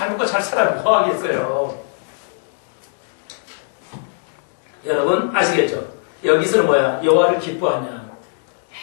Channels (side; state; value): right; silent; digital silence